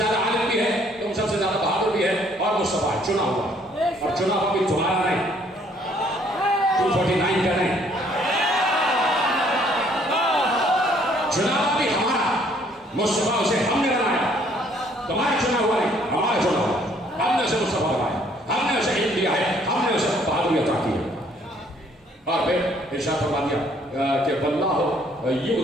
عالم بھی ہے, تم سب سے زیادہ بہادر بھی ہے, اور مصطفیٰ چنا ہوا, اور چنا ہوا بھی تمہارا نہیں, 249 کا نہیں, چنا ہوا بھی ہمارا. مصطفیٰ اسے ہم نے بنایا, تمہارا چنا ہوا نہیں, ہمارا چنا ہوا. ہم نے اسے مصطفیٰ بنایا, ہم نے اسے علم دیا ہے, ہم نے اسے بہادری عطا کی ہے. اور پھر ارشاد فرما دیا کہ واللہ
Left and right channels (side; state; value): both; normal; correlation 0.63